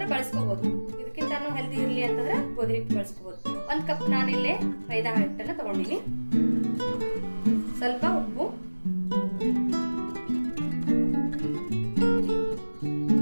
ಬಳಸ್ಕೋಬಹುದು. ಇದಕ್ಕಿಂತ ಹೆಲ್ದಿ ಇರಲಿ ಅಂತಂದ್ರೆ ಗೋಧಿ ಹಿಟ್ಟು ಬಳಸ್ಕೋಬಹುದು. 1 ಕಪ್ ನಾನಿಲ್ಲೇ ಮೈದಾ ಹಿಟ್ಟನ್ನು ತಗೊಂಡಿನಿ. ಸ್ವಲ್ಪ ಉಪ್ಪು,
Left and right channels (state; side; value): inverted; both; correlation -1.00